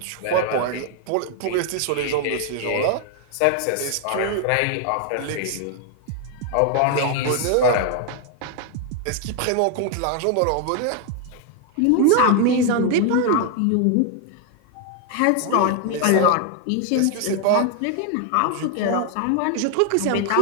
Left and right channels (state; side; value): different; both; correlation 0.00